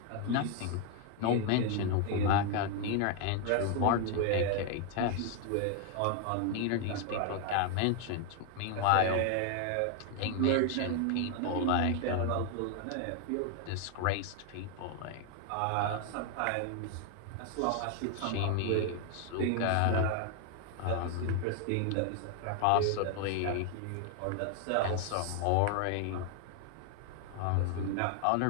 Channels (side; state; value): both; different; correlation 0.00